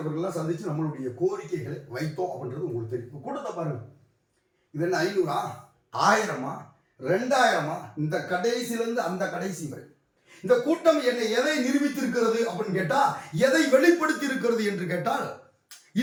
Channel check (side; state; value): both; identical; correlation 1.00